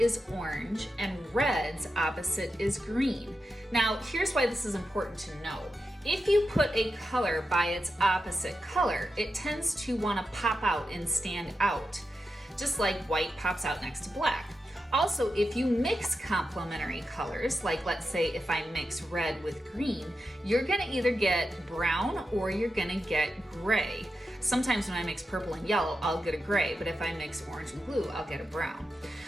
is orange, and red's opposite is green. Now, here's why this is important to know. If you put a color by its opposite color, it tends to want to pop out and stand out, just like white pops out next to black. Also, if you mix complementary colors, like let's say if I mix red with green, you're gonna either get brown or you're gonna get gray. Sometimes when I mix purple and yellow, I'll get a gray, but if I mix orange and blue, I'll get a brown.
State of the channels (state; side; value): normal; both; correlation 0.89